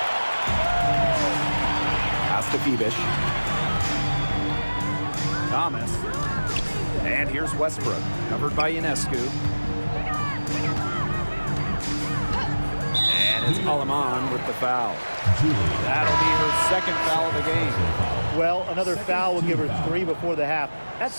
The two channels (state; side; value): inverted; both; correlation -1.00